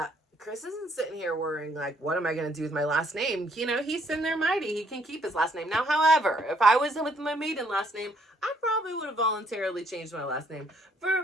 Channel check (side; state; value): both; normal; correlation 0.67